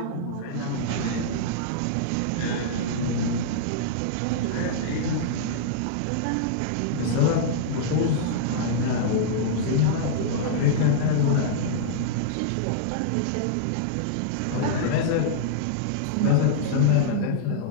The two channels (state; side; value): different; both; correlation -0.02